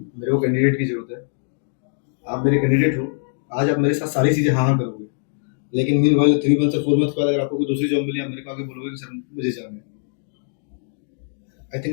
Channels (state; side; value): silent; right; digital silence